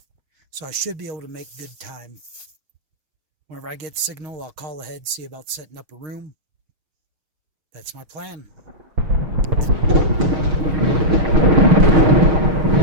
So I should be able to make good time. Whenever I get signal, I'll call ahead, see about setting up a room. That's my plan.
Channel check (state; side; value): late; left; 6.4 ms